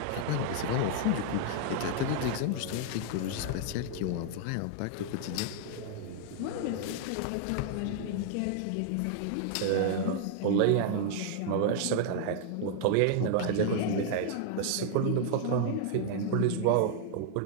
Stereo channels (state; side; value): different; both; correlation -0.01